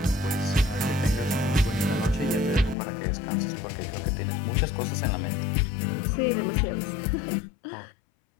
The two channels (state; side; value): drops out; right; at 2.8 s